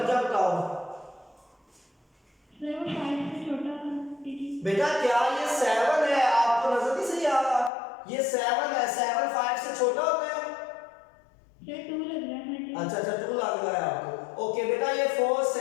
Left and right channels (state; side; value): drops out; right; at 7.7 s